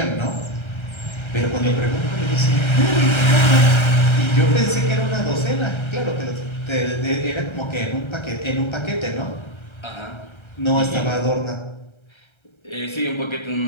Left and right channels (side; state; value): right; late; 1.3 ms